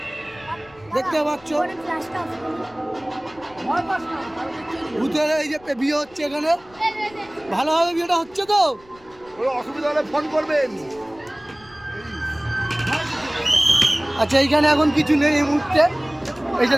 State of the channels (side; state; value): left; noise; rumble, 26 dB below the sound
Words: দেখতে পাচ্ছ ভূতের এই যে বিয়ে হচ্ছে এখানে। ভালোভাবে বিয়েটা হচ্ছে তো? অসুবিধা হলে ফোন করবেন। আচ্ছা, এইখানে এখন কিছু নেই এই মুহূর্তে। এই যে